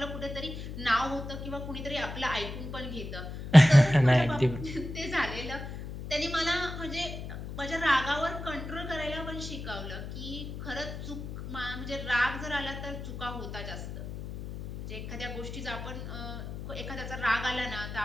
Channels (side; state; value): left; noise; hum, 8 dB below the sound